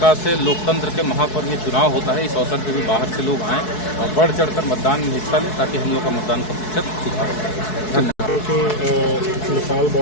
से लोकतंत्र के महापर्व ये चुनाव होता है, इस अवसर पे भी बाहर से लोग आएँ और बढ़ चढ़कर मतदान में हिस्सा लें ताकि हम लोग का मतदान का प्रतिशत सुधार हो सके। धन्यवाद। क्योंकि नेपाल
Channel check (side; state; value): right; late; 4.7 ms